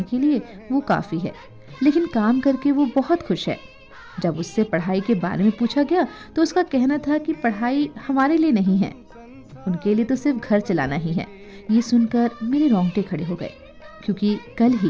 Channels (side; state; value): both; identical; correlation 1.00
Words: के लिए वो काफी है, लेकिन काम करके वो बहुत खुश है। जब उससे पढ़ाई के बारे में पूछा गया तो उसका कहना था कि पढ़ाई हमारे लिए नहीं है, उनके लिए तो सिर्फ घर चलाना ही है। ये सुनकर मेरे रोंगटे खड़े हो गए, क्योंकि कल